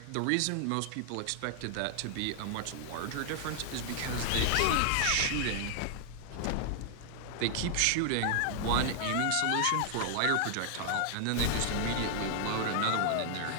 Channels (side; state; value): both; different; correlation -0.01